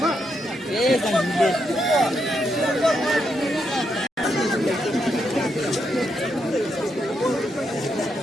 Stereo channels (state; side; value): normal; both; correlation 0.81